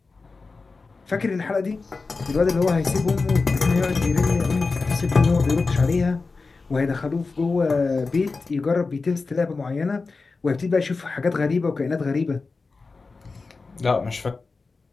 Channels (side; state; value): right; quieter; 4.1 dB